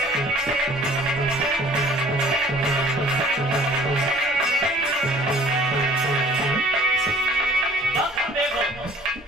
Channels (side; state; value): both; normal; correlation 0.52